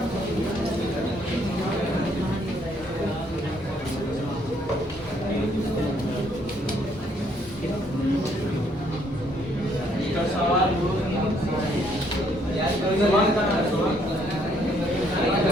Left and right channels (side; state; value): both; normal; correlation 0.68